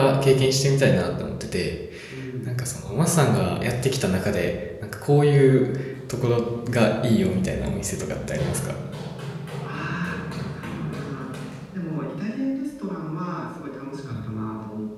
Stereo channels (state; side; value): identical; both; correlation 1.00